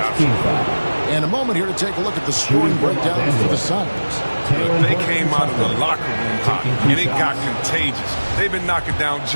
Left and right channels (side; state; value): both; inverted; correlation -1.00